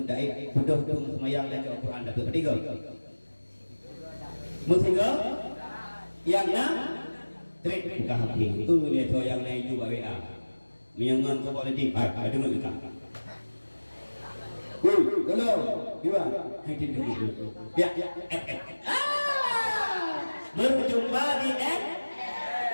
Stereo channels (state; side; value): inverted; both; correlation -1.00